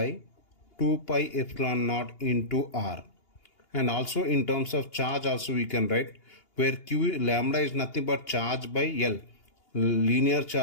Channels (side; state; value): right; late; 2.8 ms